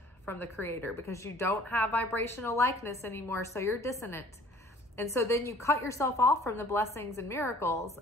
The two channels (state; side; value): normal; both; correlation 0.52